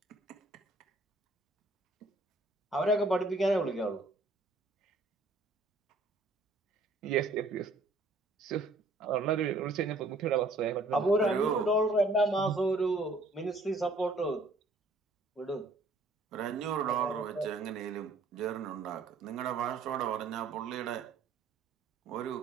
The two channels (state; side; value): quieter; left; 3.1 dB